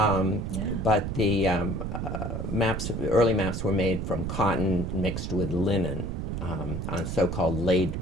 the early maps were made from cotton mixed with linen on so-called laid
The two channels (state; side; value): noise; right; rumble, 3 dB below the sound